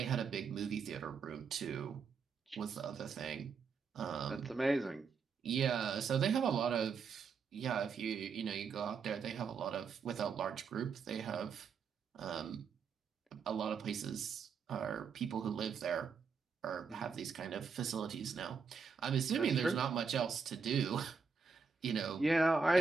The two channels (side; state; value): left; quieter; 5.5 dB